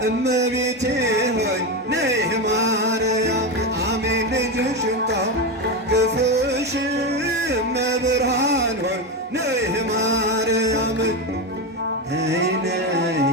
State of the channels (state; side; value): normal; both; correlation 0.14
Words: እመቤቴ ሆይ ነይ ማርያም አሜን ልጅሽን ታቅፈሽ እመብርሃን ሆይ ነይ ማርያም ነይ ነይ